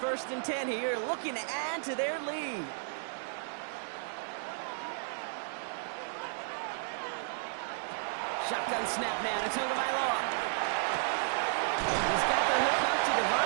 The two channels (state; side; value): silent; left; 56 dB below the other